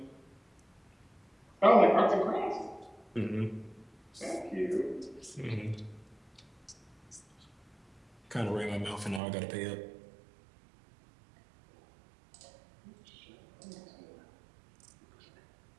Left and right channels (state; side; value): drops out; left; at 9.2 s